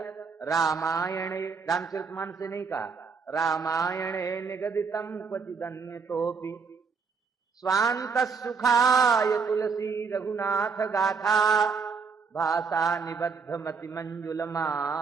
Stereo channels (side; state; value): left; quieter; 5.3 dB